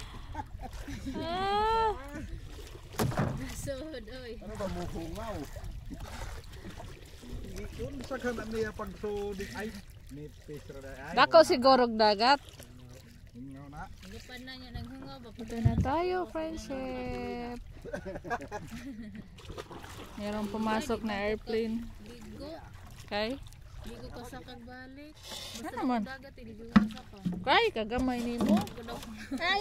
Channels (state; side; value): identical; both; correlation 1.00